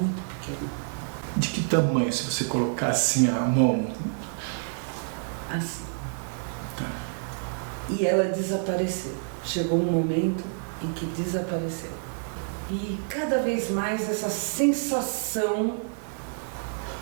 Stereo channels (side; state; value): left; silent; digital silence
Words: pequena. De que tamanho, se você colocar assim a mão? Assim. E ela desapareceu. Chegou um momento em que desapareceu. E cada vez mais essa sensação